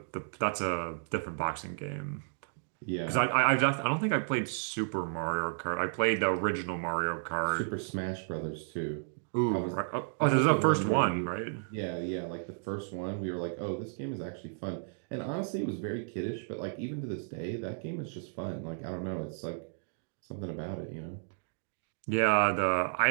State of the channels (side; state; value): left; silent; digital silence